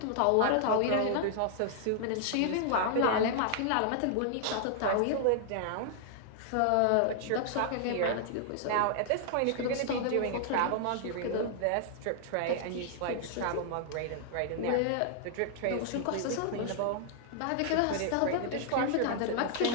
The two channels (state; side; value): different; both; correlation -0.01